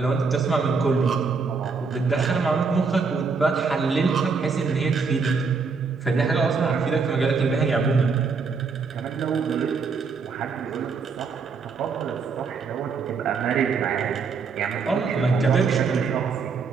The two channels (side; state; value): left; quieter; 5.0 dB